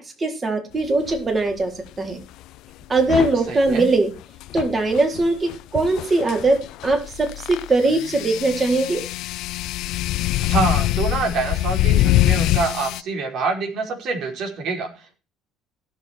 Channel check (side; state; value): both; normal; correlation 0.62